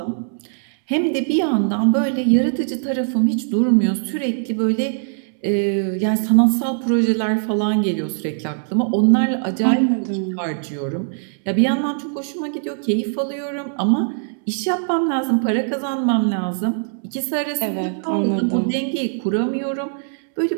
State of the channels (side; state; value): left; silent; 65 dB below the other